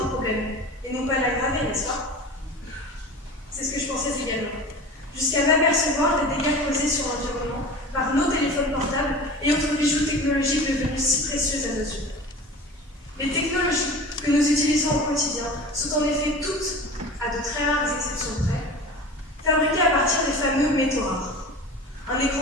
un problème et non pas l'aggraver, n'est-ce pas? C'est ce que je pensais également, jusqu'à m'apercevoir des dégâts causés sur l'environnement par nos téléphones portables et autres bijoux technologiques devenus si précieux à nos yeux. Les technologies que nous utilisons au quotidien sont en effet toutes, à de très rares exceptions près, fabriquées à partir des fameux métaux rares. Un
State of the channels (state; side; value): normal; both; correlation 0.36